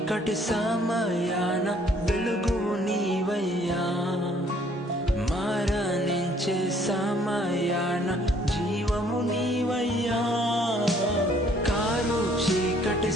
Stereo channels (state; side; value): normal; both; correlation 0.62